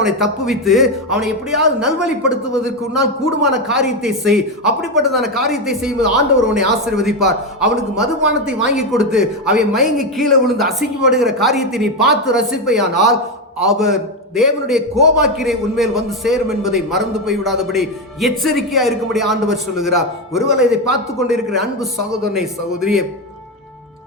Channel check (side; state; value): both; normal; correlation 0.10